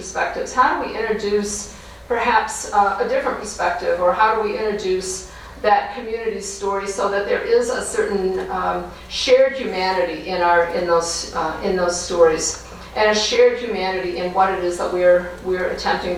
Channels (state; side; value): identical; both; correlation 1.00